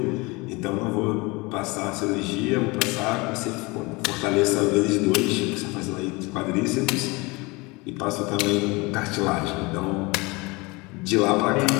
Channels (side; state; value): right; quieter; 25.3 dB